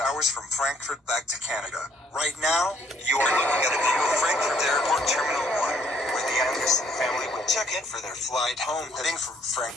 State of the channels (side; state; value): both; normal; correlation 0.65